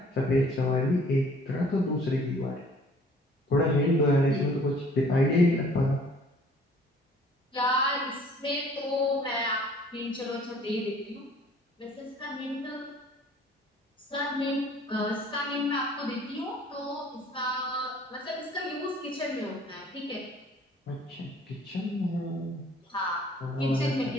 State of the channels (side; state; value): both; normal; correlation 0.54